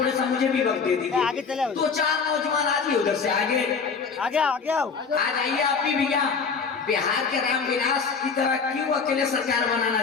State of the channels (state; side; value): quieter; right; 5.4 dB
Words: سا مجھے بھی وقت دے دیجیے. 2-4 نوجوان آجیے ادھر سے آگے آ جائیے. آپ بھی بھیا بہار کے رام ولاس کی طرح کیوں اکیلے سرکار